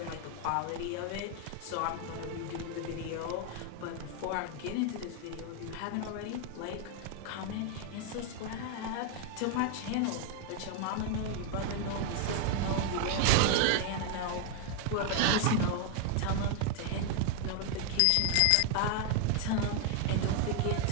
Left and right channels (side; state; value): both; different; correlation 0.00